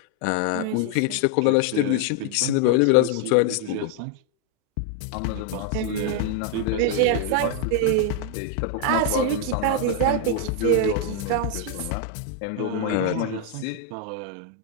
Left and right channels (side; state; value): both; different; correlation 0.00